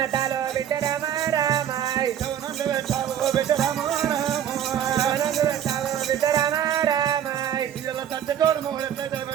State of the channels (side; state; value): left; quieter; 9.8 dB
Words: బిడ్డ రామ రామ నందు పెట్టావు ఓ బిడ్డ రాము రాము నందు పెట్టావు బిడ్డ రామ రామ ఇలా సచ్చటోడు మగుడు ఎట్లయితే